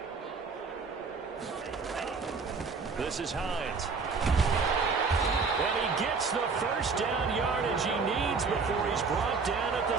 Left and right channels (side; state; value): left; quieter; 4.7 dB